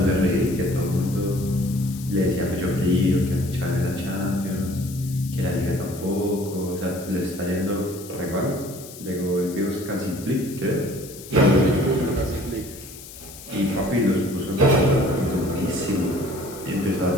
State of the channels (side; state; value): left; noise; hiss, 16 dB below the sound